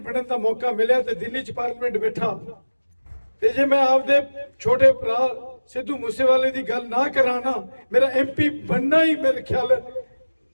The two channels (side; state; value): both; inverted; correlation -1.00